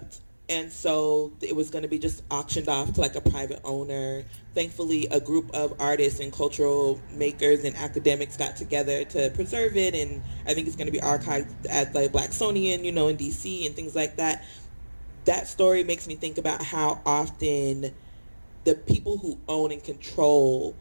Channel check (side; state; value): both; inverted; correlation -1.00